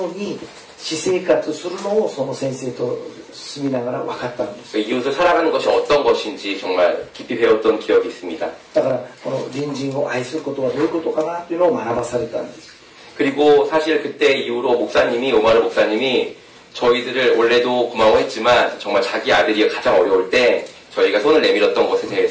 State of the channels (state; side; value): identical; both; correlation 1.00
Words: うに私生活するのをその先生と住みながら分かったんです。 이웃을 살아가는 것이 어떤 것인지 정말 깊이 배웠던 기억이 있습니다. だからこの隣人を愛することはどういうことかなというのを学ばされたんです。 그리고 사실 그때 이후로 오마르 목사님이 저희들을 원래도 고마워했지만 정말 자기 아들이 가장 어려울 때 저희가 손을 내밀었던 것에